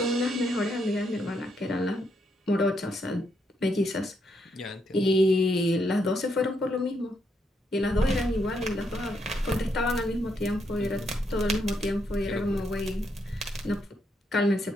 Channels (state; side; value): normal; both; correlation 0.77